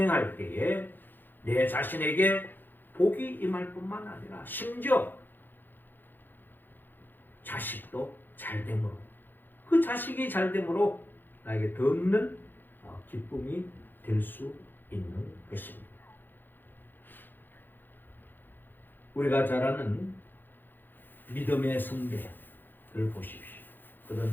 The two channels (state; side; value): late; right; 0.092 ms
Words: 때에 내 자신에게 복이 임할 뿐만 아니라 심지어 자식도 잘됨으로, 그 자식이 잘됨으로 나에게 더 없는 기쁨이 될 수 있는 것입니다. 우리가 잘 아는 믿음의 선배를 보십시오.